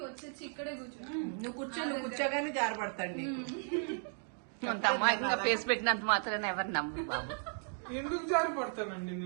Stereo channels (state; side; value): silent; left; 54 dB below the other